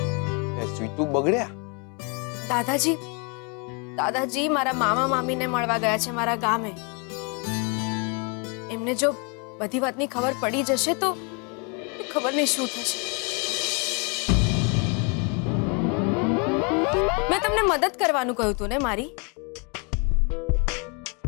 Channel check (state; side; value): quieter; right; 33.1 dB